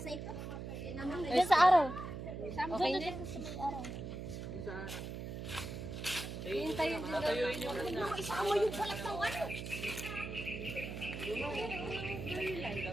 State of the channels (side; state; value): right; noise; hum, 7 dB below the sound